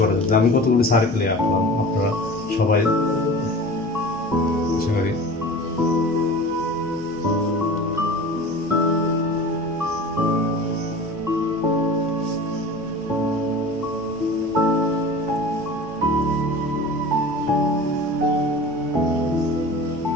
করা যেতে, আমি কতগুলো সার্কেলে আঁকলাম, আপনারা সবাই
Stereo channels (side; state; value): both; normal; correlation 0.37